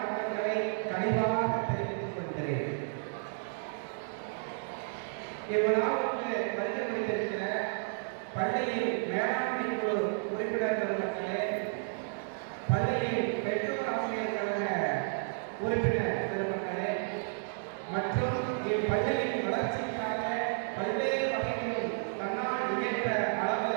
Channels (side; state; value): left; silent; digital silence